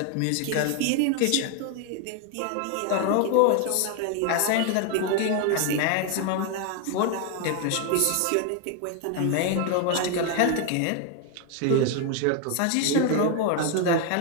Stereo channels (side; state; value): both; different; correlation 0.01